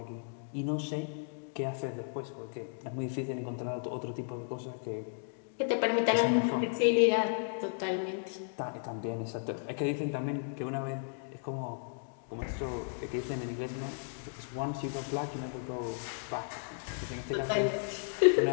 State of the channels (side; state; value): right; silent; digital silence